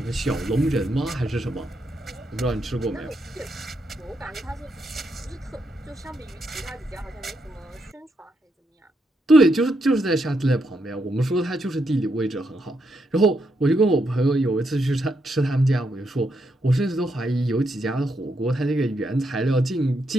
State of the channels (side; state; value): both; normal; correlation 0.80